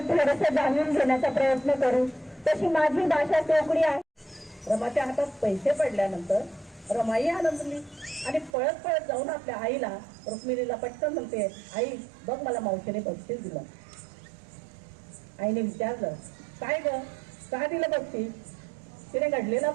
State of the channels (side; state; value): left; drops out; at 8.6 s